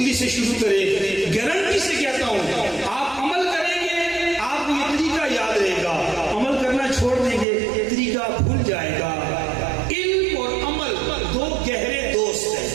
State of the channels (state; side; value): drops out; left; at 7.5 s